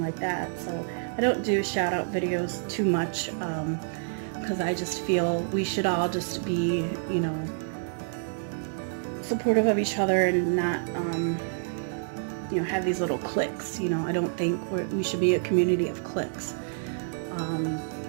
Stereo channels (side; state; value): left; silent; digital silence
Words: like that. So I don't do shout out videos too much because I just feel we should all just be, you know, supportive of each other and not you know, have these little cliques. You know, I don't think we should be a community of cliques.